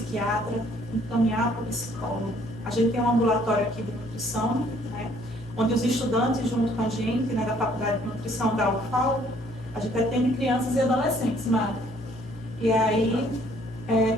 encaminhar para o psicólogo. A gente tem um ambulatório aqui de nutrição, né? Onde os estudantes, junto com a gente, né, da Faculdade de Nutrição da UFAL, a gente atende crianças e adolescentes, Mari. E aí,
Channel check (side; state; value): left; noise; hum, 17 dB below the sound